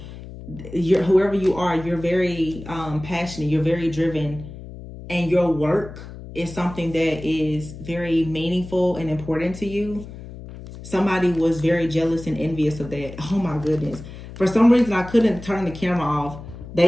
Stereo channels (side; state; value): left; noise; hum, 14 dB below the sound